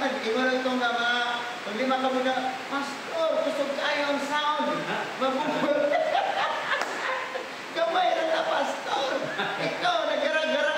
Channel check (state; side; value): identical; both; correlation 1.00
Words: Ingon itong mga, kung 5 ka muna, Pastor, kusog kayo ang sound. Mabubul. Gamay na na, Pastor. Ikaw, nagara-gara